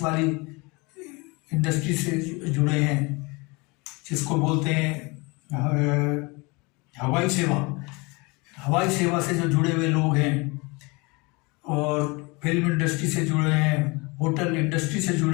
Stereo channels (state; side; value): quieter; right; 26.9 dB